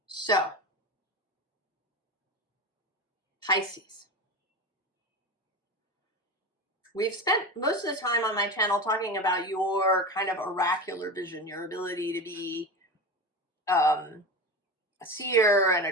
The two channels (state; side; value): normal; both; correlation 0.25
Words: So, Pisces. We've spent most of the time on my channel talking about your kind of oracular vision, your ability to be a seer and